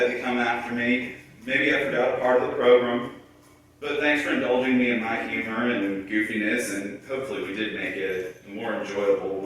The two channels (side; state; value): both; identical; correlation 1.00